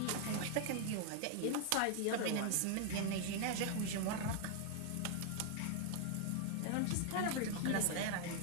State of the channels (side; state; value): both; different; correlation 0.00